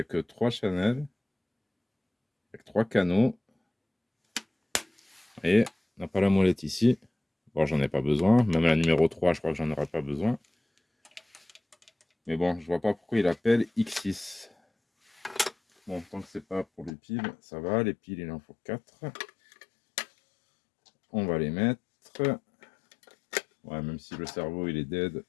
que 3 channels, avec 3 canaux. Et on n'a pas la molette ici. Bon, j'en ai pas besoin. Même la numéro 3, je crois que j'en aurai pas besoin. Mais bon, je vois pas pourquoi il appelle X6. Bon, tant que c'est pas pour les piles, ça va. Les piles, il en faut 4. On va les mettre. Ouais, même si le cerveau, il est dead,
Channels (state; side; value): drops out; right; at 16.9 s